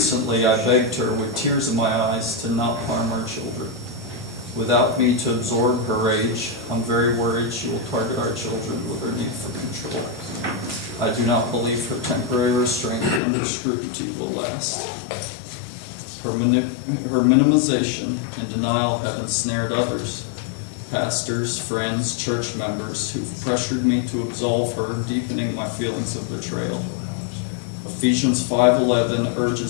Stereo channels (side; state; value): right; drops out; at 13.2 s